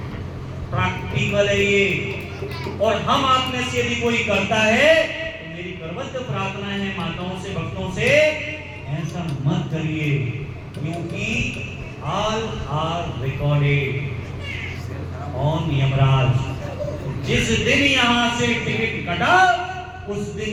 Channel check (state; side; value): identical; both; correlation 1.00